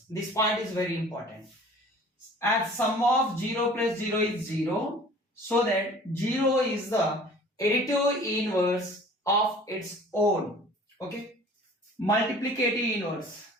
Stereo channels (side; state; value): both; normal; correlation 0.47